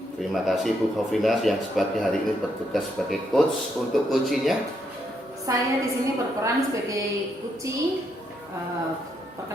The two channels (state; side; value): normal; both; correlation 0.77